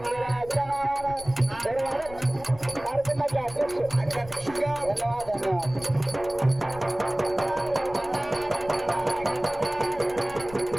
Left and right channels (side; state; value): left; noise; rumble, 17 dB below the sound